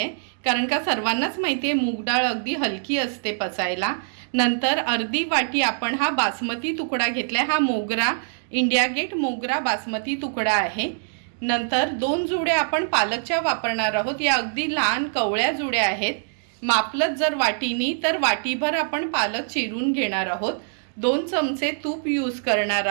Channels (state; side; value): silent; left; digital silence